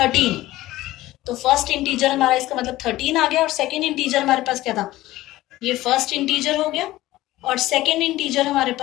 तो फर्स्ट इंटीजर हमारा इसका मतलब 13 आ गया, और सेकेंड इंटीजर हमारे पास क्या था, ये फर्स्ट इंटीजर हो गया और सेकेंड इंटीजर हमारे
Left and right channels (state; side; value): quieter; right; 16.6 dB